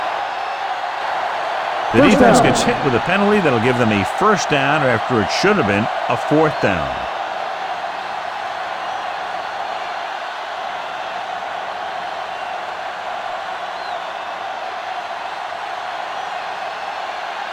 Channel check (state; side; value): identical; both; correlation 1.00